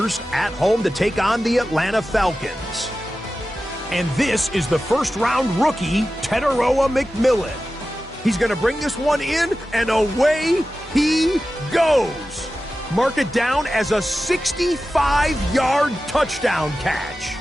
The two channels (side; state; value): both; normal; correlation 0.94